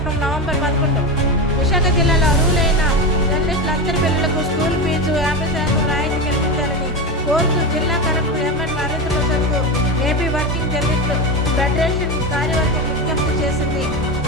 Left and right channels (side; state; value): both; normal; correlation 0.18